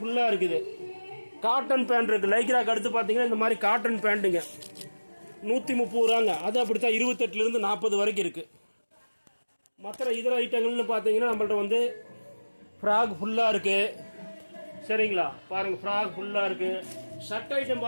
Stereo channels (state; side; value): inverted; both; correlation -1.00